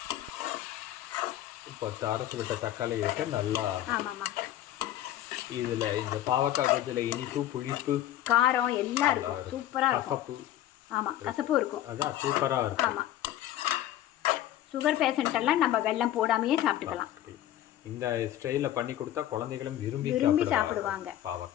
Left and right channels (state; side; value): quieter; right; 12.9 dB